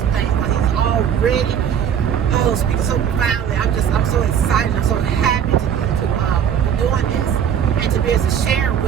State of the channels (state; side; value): quieter; left; 8.6 dB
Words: things. But he's already speaking so profoundly. I'm so excited. I'm so happy.